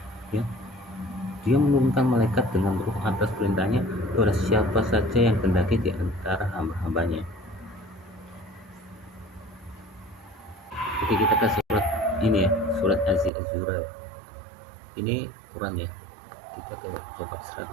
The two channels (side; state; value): left; drops out; at 13.3 s